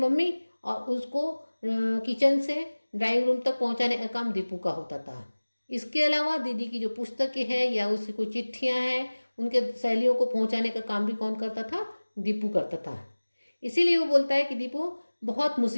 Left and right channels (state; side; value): inverted; both; correlation -1.00